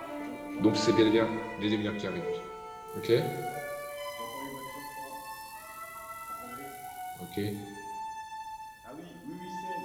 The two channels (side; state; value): both; identical; correlation 1.00